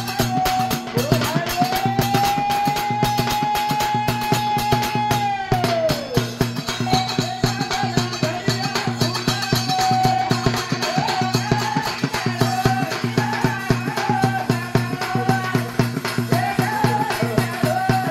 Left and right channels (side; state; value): both; identical; correlation 1.00